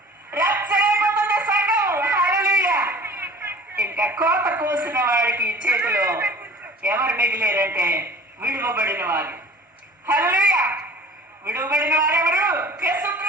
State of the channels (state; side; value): normal; both; correlation 0.44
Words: రాప్చర్ అయిపోతుంది సంఘం. హల్లెలూయా. ఇంకా కోత కోసిన వాడికి చేతిలో ఎవరు మిగిలేరంటే విడువబడిన వారు. హల్లెలూయా. విడువబడిన వారు ఎవరు?